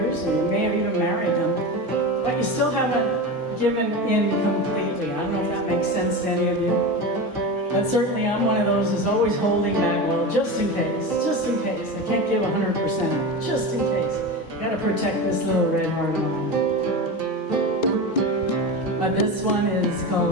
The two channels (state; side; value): normal; both; correlation 0.24